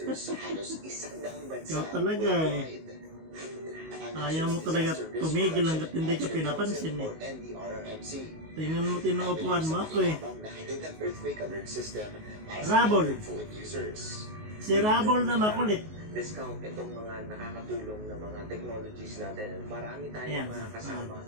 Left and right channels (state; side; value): late; left; 19 ms